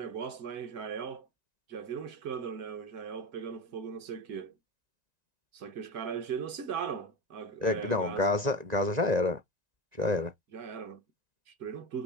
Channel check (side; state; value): left; late; 2.0 ms